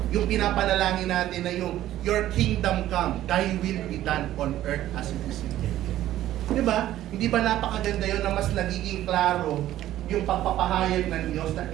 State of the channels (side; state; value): left; quieter; 13.5 dB